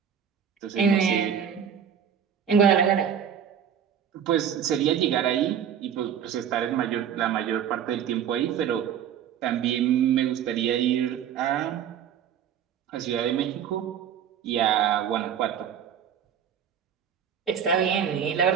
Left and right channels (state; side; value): quieter; left; 8.6 dB